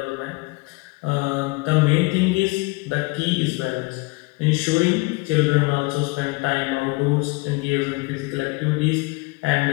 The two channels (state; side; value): quieter; right; 25.5 dB